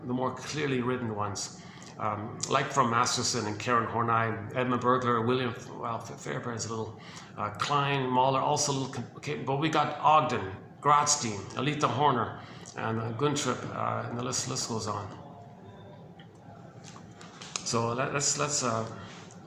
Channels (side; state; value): both; identical; correlation 1.00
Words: the more clearly written ones, like from Masterson and Karen Horney, Edmund Bergler, William Fairbairn's a little, Klein, Mahler, also a little, okay, but we got Ogden, Grotstein, Alita Horner, and Guntrip, and the list goes on. So let's